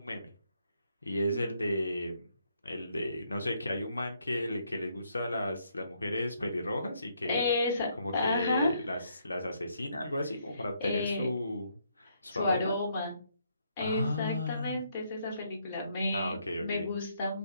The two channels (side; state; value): both; inverted; correlation -0.72